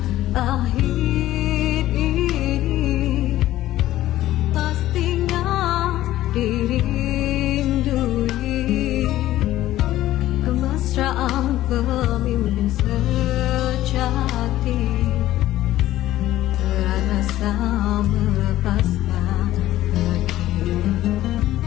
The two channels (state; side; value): quieter; right; 14.6 dB